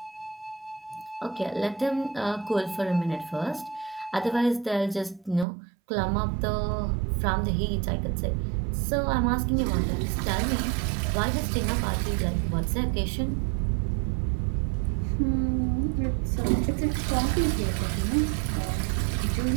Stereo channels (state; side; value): drops out; left; at 5.5 s